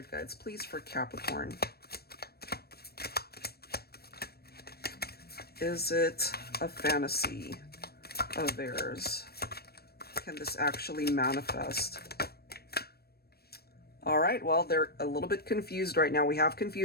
guides, please, for Capricorn. Is it a fantasy of theirs? Can this actually manifest? All right, well, they're a little bit confused right now. We have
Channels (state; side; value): late; right; 0.46 ms